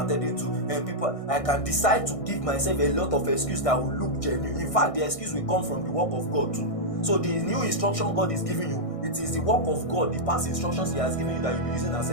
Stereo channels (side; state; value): right; late; 1.6 ms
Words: to. And people, I can decide to give myself a lot of excuses that will look genuine. In fact, the excuse will come from the work of God too. So the new instruction God is giving you, it is the work of God, the past instructions He has given you that you'll be using as